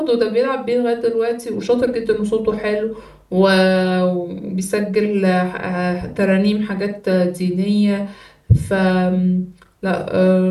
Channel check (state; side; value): identical; both; correlation 1.00